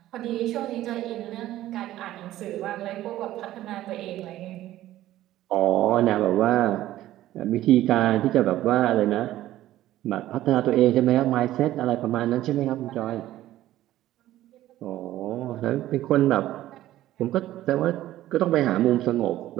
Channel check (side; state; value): left; quieter; 14.3 dB